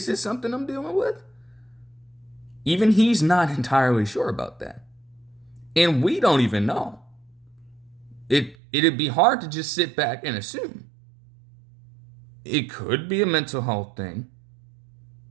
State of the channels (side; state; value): left; drops out; at 8.6 s